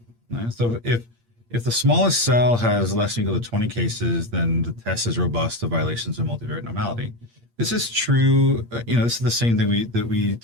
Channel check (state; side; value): late; left; 8.6 ms